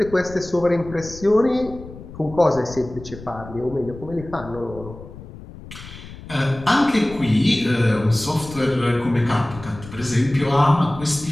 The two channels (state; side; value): noise; left; rumble, 15 dB below the sound